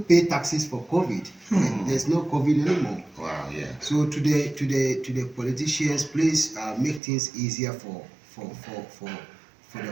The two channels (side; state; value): left; drops out; at 7.0 s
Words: taxes for COVID. There's no COVID anymore. Wow. Yeah. So to the politicians, please make things easier for